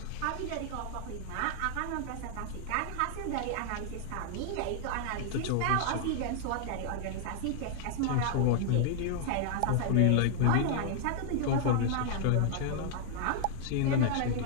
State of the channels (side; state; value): both; different; correlation -0.01